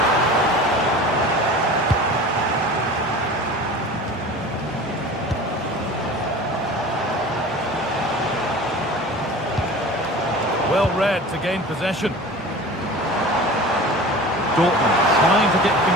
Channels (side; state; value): both; normal; correlation 0.38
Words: Well read to gain possession. Dortmund trying to get